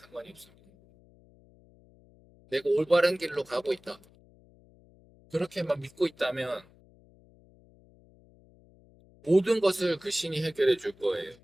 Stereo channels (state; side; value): noise; left; hum, 28 dB below the sound